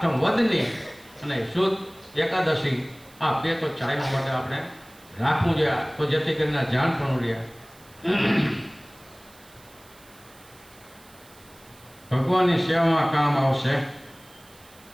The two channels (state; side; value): noise; right; hiss, 25 dB below the sound